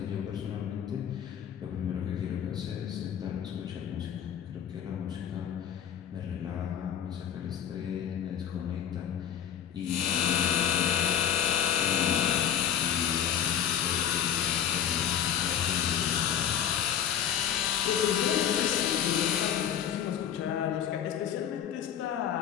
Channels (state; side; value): quieter; right; 9.6 dB